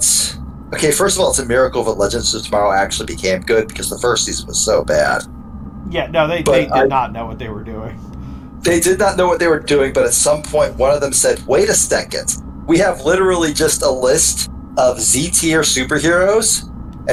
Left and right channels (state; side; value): identical; both; correlation 1.00